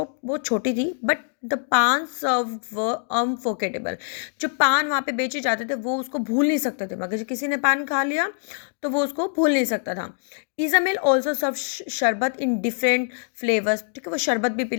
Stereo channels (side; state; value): right; silent; 63 dB below the other